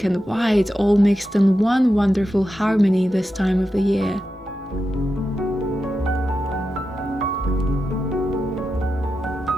and white all mixed in one wonderful harmony this time of the year.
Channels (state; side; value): normal; both; correlation 0.89